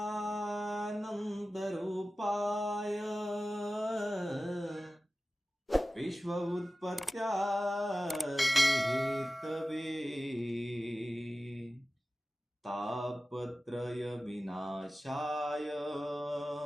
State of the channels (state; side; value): normal; both; correlation 0.95